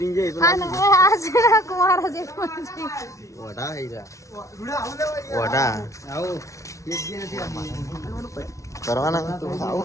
જાય કુંવારા જેઠ બનશે. કરવાના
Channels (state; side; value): late; right; 0.15 ms